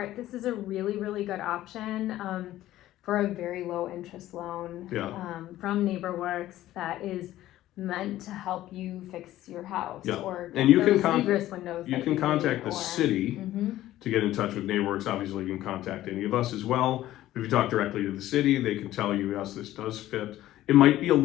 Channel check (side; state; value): right; quieter; 14.4 dB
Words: this is a really, really good option for a very low interest loan from NeighborWorks that is meant to help you fix your house Yeah. or And you can those egress windows. you that can need, contact the or- city Mhm. to get in touch with NeighborWorks. Obviously, you can contact any of us as well. If you talk directly to the city, they can tell you, yes, this does fit. It might be a